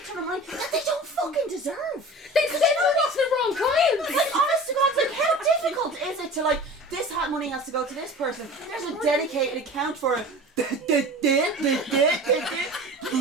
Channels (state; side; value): normal; both; correlation 0.38